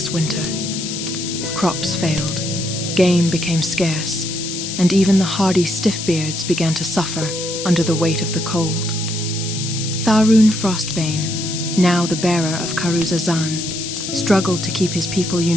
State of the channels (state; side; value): noise; left; hiss, 6 dB below the sound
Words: winter. Crops failed, game became scarce, and even the hardy Stiffbeards began to suffer under the weight of the cold. Tharun Frostbane, now the bearer of Karuzazan, struggled to keep his people